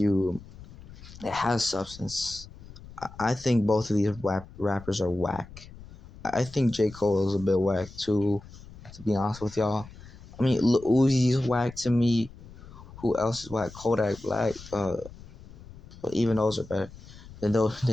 it has substance. I think both of these rappers are whack. I think J. Cole is a bit whack too, to be honest with y'all. I mean, Lil Uzi's whack to me. Who else is whack? Kodak Black. But even those are better than those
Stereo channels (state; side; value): noise; left; rumble, 18 dB below the sound